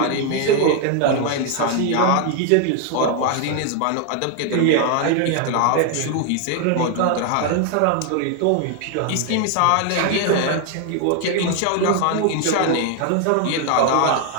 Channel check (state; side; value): different; both; correlation 0.01